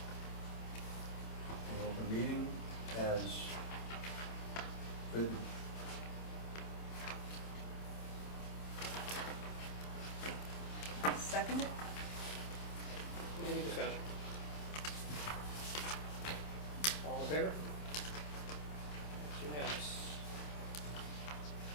open meeting as written. Second it? Any discussion? All in favor? It's unanimous.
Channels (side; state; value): right; late; 27 ms